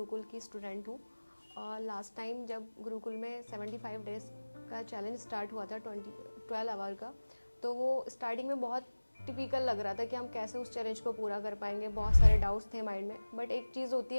की स्टूडेंट हूँ। और लास्ट टाइम जब गुरुकुल में 75 डेज़ का चैलेंज स्टार्ट हुआ था 12 आवर का, तो वो स्टार्टिंग में बहुत टिपिकल लग रहा था कि हम कैसे उस चैलेंज को पूरा कर पाएंगे। बहुत सारे डाउट्स थे माइंड में, बट एक चीज़ होती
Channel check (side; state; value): both; inverted; correlation -1.00